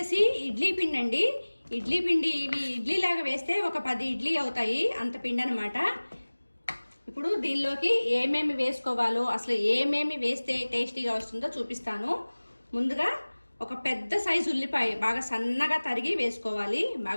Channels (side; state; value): both; inverted; correlation -1.00